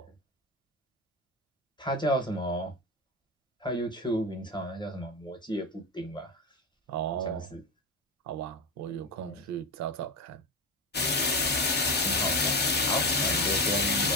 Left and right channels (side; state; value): both; normal; correlation 0.19